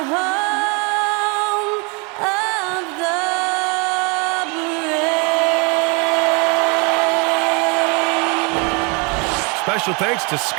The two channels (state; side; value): quieter; left; 31.9 dB